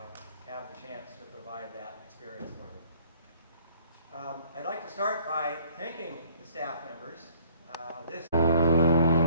have the chance to provide that experience for them. I'd like to start by thanking the staff members. This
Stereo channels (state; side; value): inverted; both; correlation -0.59